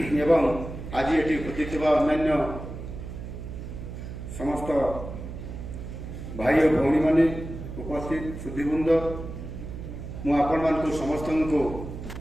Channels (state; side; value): noise; right; hum, 9 dB below the sound